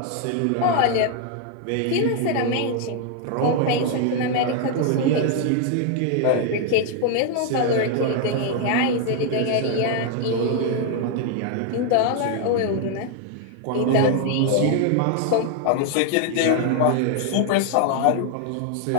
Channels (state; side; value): different; both; correlation 0.00